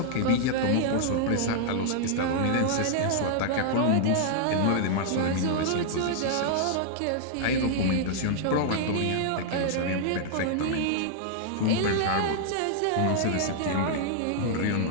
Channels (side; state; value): both; different; correlation -0.01